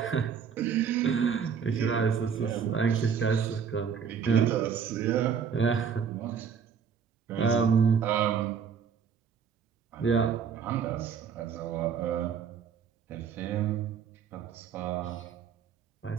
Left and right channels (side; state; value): left; quieter; 7.0 dB